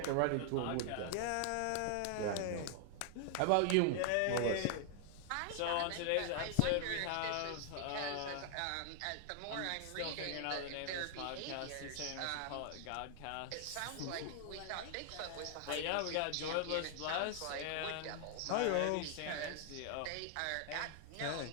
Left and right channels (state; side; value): different; both; correlation 0.00